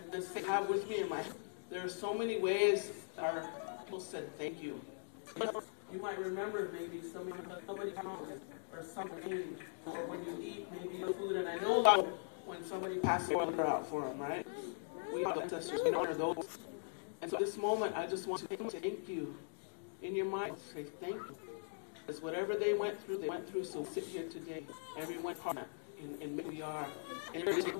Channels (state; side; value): silent; right; digital silence